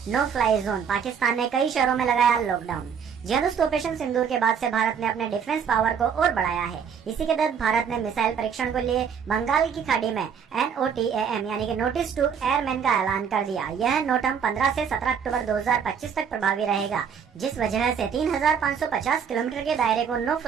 नो फ्लाई जोन, पाकिस्तान ने कई शहरों में लगाया लॉकडाउन। जी हाँ दोस्तों, ऑपरेशन सिंदूर के बाद से भारत ने अपने डिफेंस पावर को और बढ़ाया है। इसी के तहत भारत ने मिसाइल परीक्षण को लिए बंगाल की खाड़ी में NOTAM यानी कि नोटिस टू एयरमैन का ऐलान कर दिया। यह नोटम 15 से 17 अक्टूबर 2025 तक प्रभावी रहेगा, जिस वजह से 3550 किलोमीटर के दायरे को नो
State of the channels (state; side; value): quieter; left; 7.2 dB